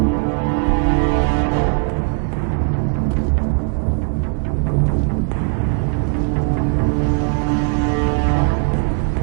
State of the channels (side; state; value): left; quieter; 38.4 dB